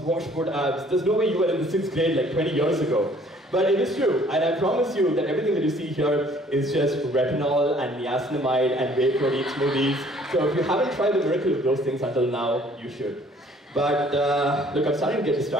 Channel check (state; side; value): normal; both; correlation 0.57